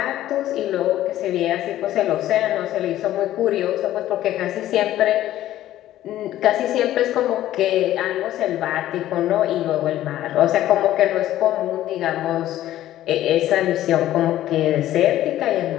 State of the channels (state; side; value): quieter; right; 13.5 dB